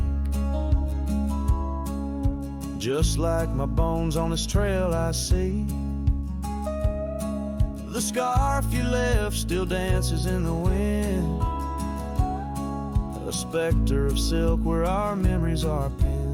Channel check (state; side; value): identical; both; correlation 1.00